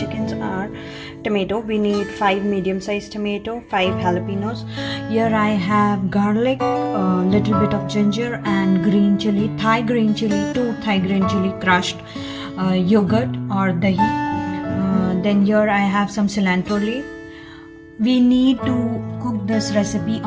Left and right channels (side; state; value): both; identical; correlation 1.00